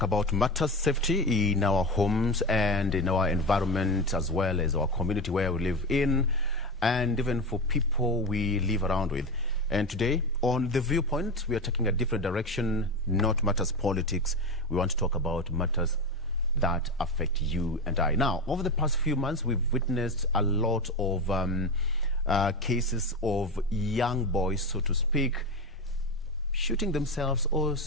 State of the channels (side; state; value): both; normal; correlation 0.21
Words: about matters safety in our homes and in our environment, as well as our community where we live in, and even for people we live around with. And today on The Viewpoint, we are taking a different direction, not matters politics. We want to talk about matters that affect you and I. Now, over the past few months, we've witnessed a lot of cases of young boys, so to speak, shooting themselves or,